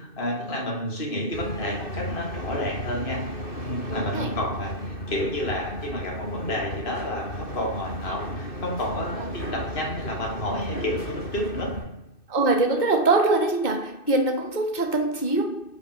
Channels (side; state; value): right; late; 2.6 ms